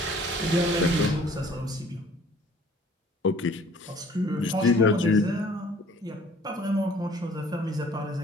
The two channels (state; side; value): normal; both; correlation 0.54